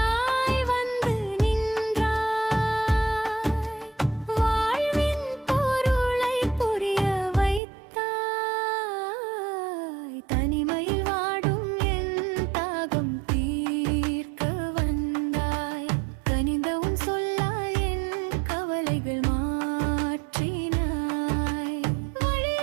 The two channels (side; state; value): left; drops out; at 7.6 s